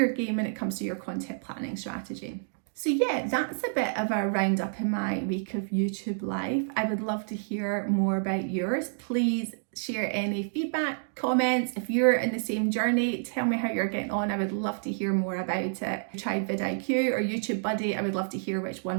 game when it comes to your content planning strategy. So yeah, that's a bit of a roundup in my week of YouTube life. I would love to hear more about yours. Please share any feedback, comments. If you're in the same journey, tell me how you're getting on. I would love to hear more about it. If you tried vidIQ or YouTube Buddy, I would love to hear which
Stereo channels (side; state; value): left; silent; digital silence